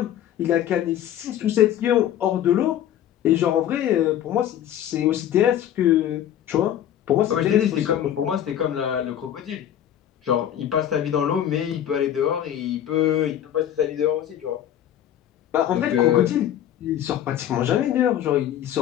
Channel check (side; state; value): right; quieter; 10.8 dB